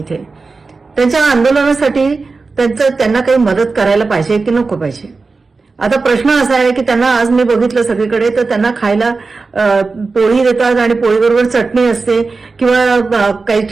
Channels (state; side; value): quieter; left; 4.1 dB